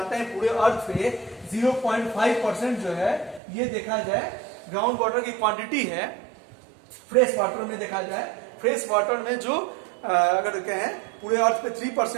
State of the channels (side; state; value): left; drops out; at 3.4 s